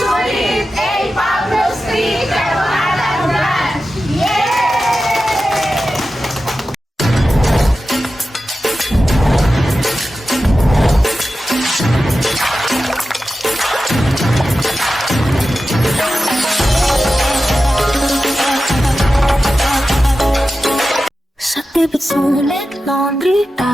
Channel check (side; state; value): both; normal; correlation 0.93